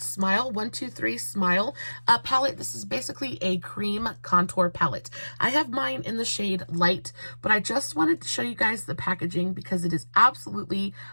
123 Smile palette. This is basically a cream contour palette. I have mine in the shade Light, but I just wanted to show you guys the packaging because it is absolutely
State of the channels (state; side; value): inverted; both; correlation -1.00